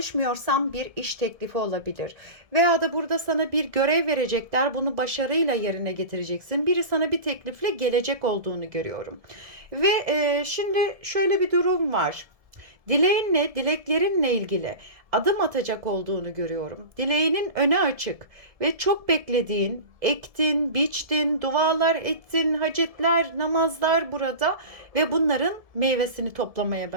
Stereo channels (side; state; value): left; late; 1.7 ms